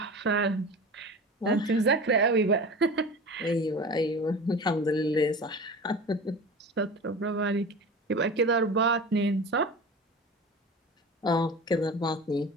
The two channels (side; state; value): both; normal; correlation 0.34